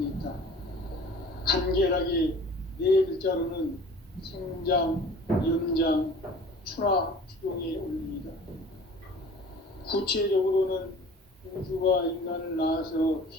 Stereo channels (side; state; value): both; normal; correlation 0.45